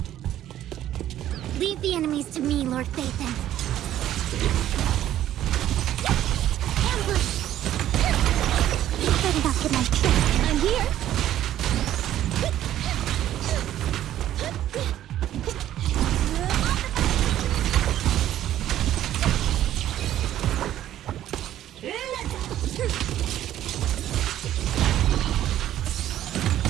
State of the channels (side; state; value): left; quieter; 12.3 dB